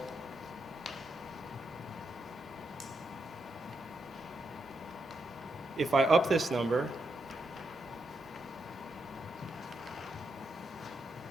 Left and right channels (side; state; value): both; normal; correlation 0.82